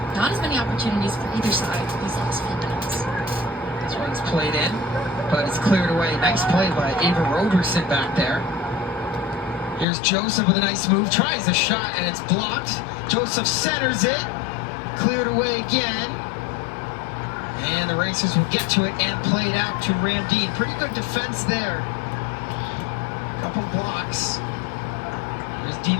not as many opportunities for either side these last few minutes. This one's played in, but it's cleared away. Nice play by Ava Roberson back there. Here's Joseph with a nice move, tries the shot, and it's blocked. Joseph centers it, cleared away again. And the Racers will get to it and play it out to Ramdeen. Pretty good defense there. Couple blocks. Here's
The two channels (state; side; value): drops out; right; at 9.9 s